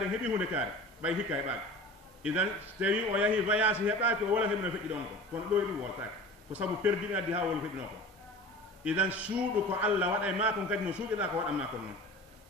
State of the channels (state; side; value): normal; both; correlation 0.38